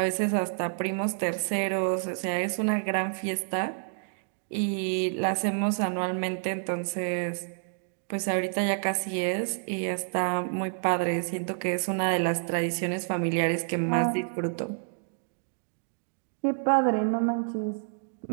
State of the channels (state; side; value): silent; left; digital silence